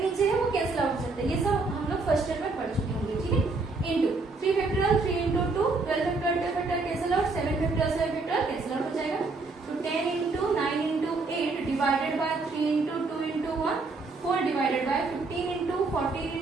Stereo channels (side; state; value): left; quieter; 3.7 dB